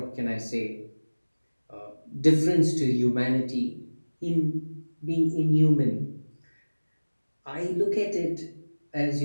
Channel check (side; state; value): both; inverted; correlation -1.00